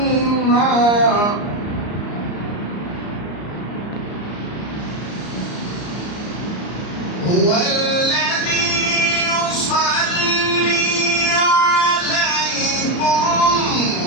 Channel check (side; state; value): right; late; 34 ms